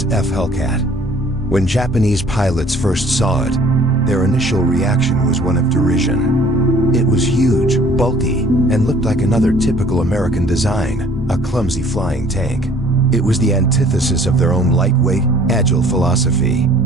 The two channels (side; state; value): both; normal; correlation 0.55